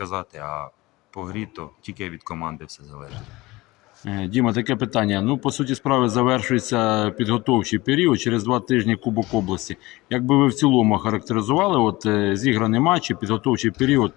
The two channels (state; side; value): quieter; right; 20.6 dB